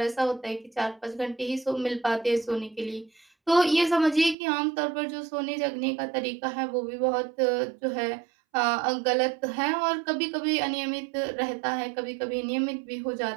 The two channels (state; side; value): drops out; left; at 4.4 s